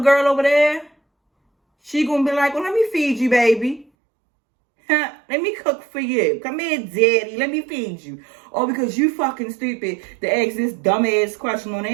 over there, she gonna be like, well, let me feed you, baby. Let me cook for you. Come here, daddy. Let me feed you. Or because you fucking stupid to ask this dumbass question on the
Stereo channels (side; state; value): left; drops out; at 3.9 s